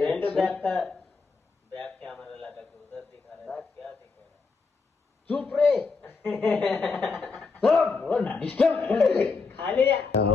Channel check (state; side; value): quieter; right; 4.5 dB